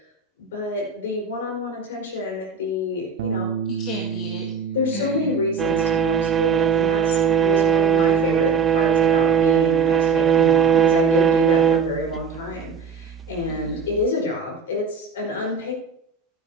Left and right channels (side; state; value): left; quieter; 5.3 dB